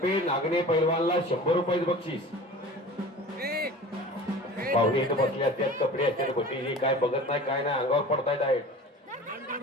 नागणे पैलवानला 100 रुपये बक्षीस. पाहुणे इथं बसले असतात. कपडे असतात गोटीची. काय बघत नाही काय नाही. अंगावर पडतायत आहेत.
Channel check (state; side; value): normal; both; correlation 0.39